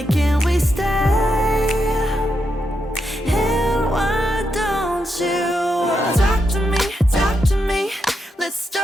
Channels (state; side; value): normal; both; correlation 0.83